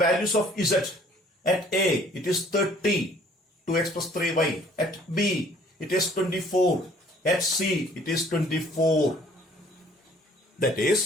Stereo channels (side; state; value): both; normal; correlation 0.57